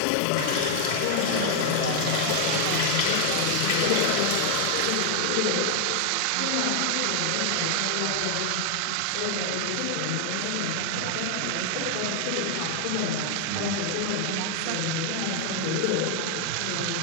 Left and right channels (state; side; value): different; both; correlation 0.00